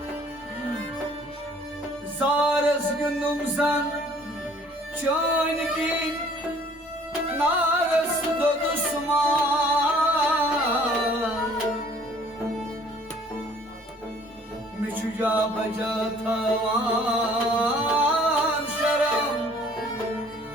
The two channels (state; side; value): normal; both; correlation 0.56